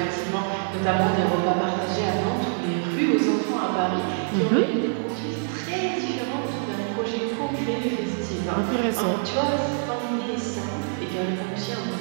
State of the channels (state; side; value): silent; left; 60 dB below the other